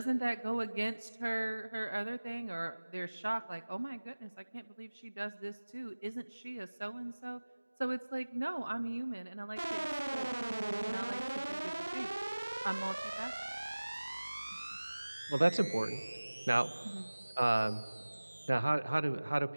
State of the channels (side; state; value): both; inverted; correlation -1.00